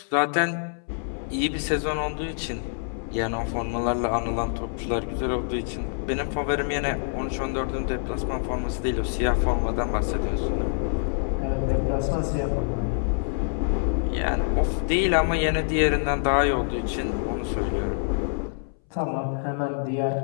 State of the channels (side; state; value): right; silent; 61 dB below the other